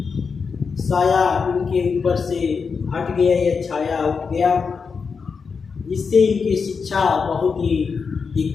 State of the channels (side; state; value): right; quieter; 5.4 dB